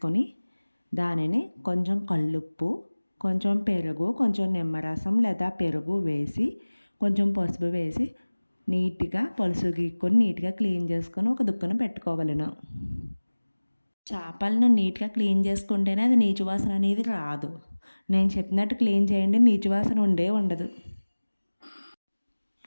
దానిని కొంచెం కల్లుప్పు, కొంచెం పెరుగు, కొంచెం నిమ్మరసం లేదా పెరుగు వేసి కొంచెం పసుపు వేసి నీట్గా పులుసు గీక్కొని నీట్గా క్లీన్ చేసుకొని ఒక దుక్కున పెట్టుకోవాలను. చేపలను నీట్గా క్లీన్ చేసుకుంటేనే అది నీచు వాసన అనేది రాదు. నేను చెప్పినట్టు క్లీన్ చేయండి, నీచు వాసన ఉండదు.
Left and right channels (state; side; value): inverted; both; correlation -1.00